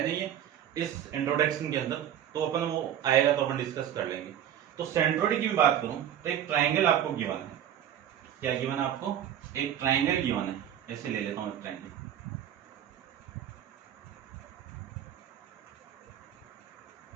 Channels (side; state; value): left; quieter; 10.4 dB